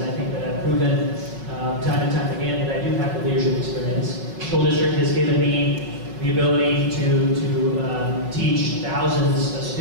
I think that I've proven time and time again that I do have the leadership experience. The school district has given me the ability to teach thousands of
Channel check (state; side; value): late; left; 5.3 ms